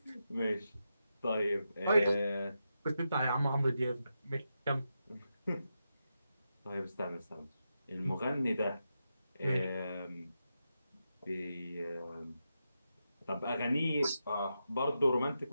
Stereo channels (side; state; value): both; inverted; correlation -0.87